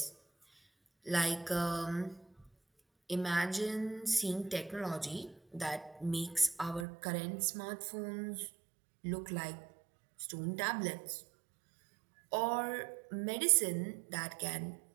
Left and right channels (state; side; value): drops out; left; at 6.9 s